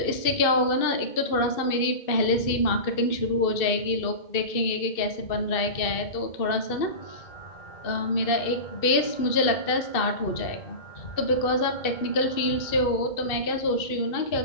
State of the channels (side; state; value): right; late; 2.6 ms